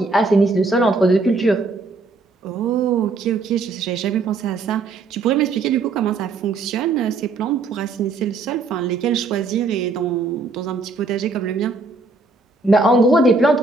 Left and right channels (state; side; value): quieter; left; 3.8 dB